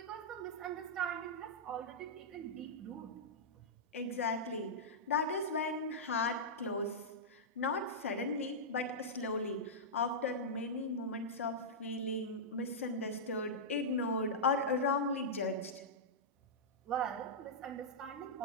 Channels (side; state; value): both; normal; correlation -0.12